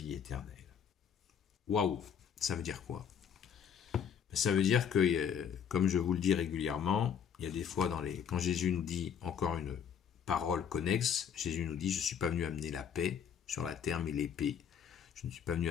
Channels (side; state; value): right; quieter; 7.9 dB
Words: éternelle. Waouh! Ça veut dire quoi? Ça veut dire que, comme je vous le dis régulièrement, il y a des fois quand Jésus nous dit encore une parole connexe, Jésus nous dit, je ne suis pas venu amener la paix sur la terre, mais l'épée. Je ne suis pas venu